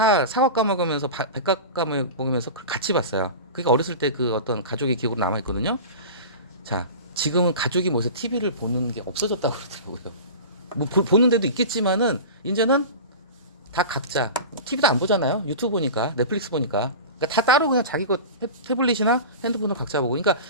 사과 까먹으면서 백각 까먹으면서 같이 봤어요. 그게 어렸을 때 그 어떤 가족의 기억으로 남아 있거든요. 자, 지금은 가족이 모여서 TV를 보는 게 없어졌다고 그러더라고요. 뭐 보는 데도 있겠지만은 이제는 다 각자 TV도 안 보잖아요. 유튜브 보니까 넷플릭스 보니까 그러니까 다 따로 그냥 자기 거 태블릿이나 핸드폰을 각자 보고. 그러니까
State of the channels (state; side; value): inverted; both; correlation -0.31